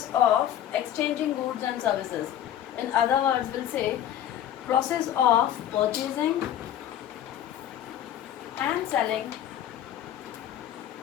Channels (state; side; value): quieter; right; 11.0 dB